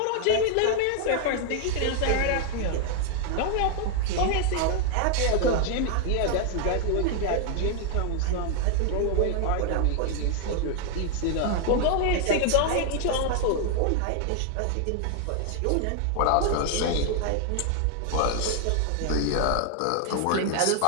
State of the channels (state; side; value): different; both; correlation 0.00